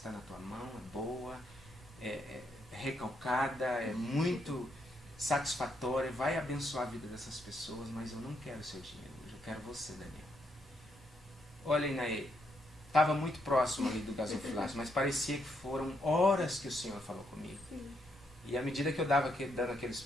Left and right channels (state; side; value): normal; both; correlation 0.77